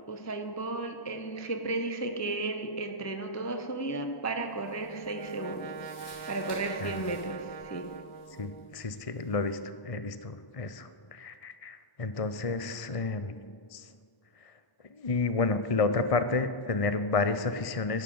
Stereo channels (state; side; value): late; right; 1.0 ms